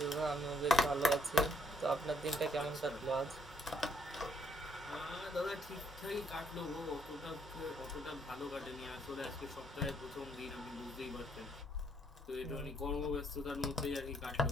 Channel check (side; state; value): both; normal; correlation 0.71